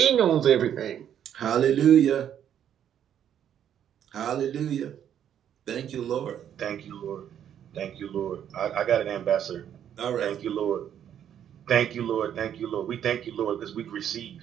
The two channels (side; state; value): left; quieter; 9.7 dB